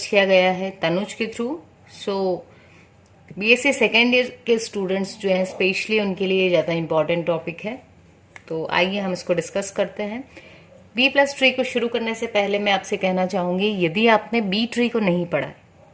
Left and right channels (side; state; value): both; identical; correlation 1.00